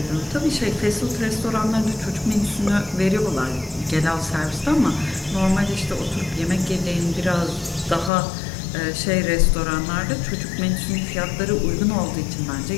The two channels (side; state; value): right; drops out; at 8.1 s